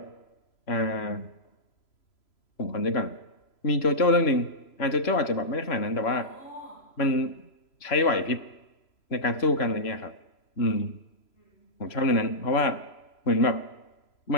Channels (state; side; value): late; right; 3.0 ms